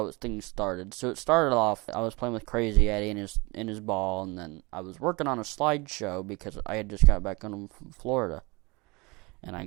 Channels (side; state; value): left; quieter; 26.0 dB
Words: things started. So it started off, I was playing with Crazy Eddie in his ball, and then I was working on a slideshow because I had just got back home from Florida. And I